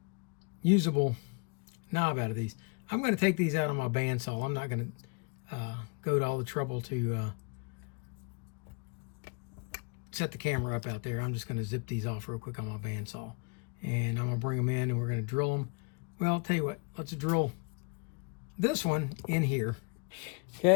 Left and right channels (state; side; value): quieter; right; 33.0 dB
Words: usable knob out of these. I'm going to take these out on my bandsaw. I'm not going to go to all the trouble to set the camera up out there. I'm just going to zip these off real quick on my bandsaw. And I'm going to bring them in and we're going to drill them. Well, I'll tell you what, let's drill this one in here.